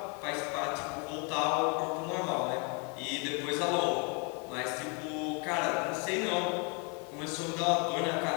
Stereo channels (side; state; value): right; quieter; 34.7 dB